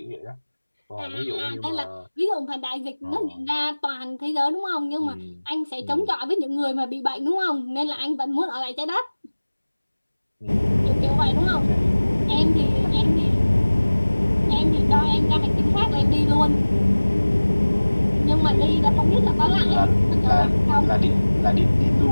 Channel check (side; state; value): both; inverted; correlation -1.00